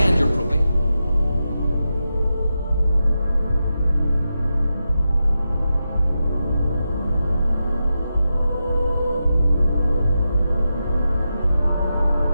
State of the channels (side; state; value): both; inverted; correlation -0.89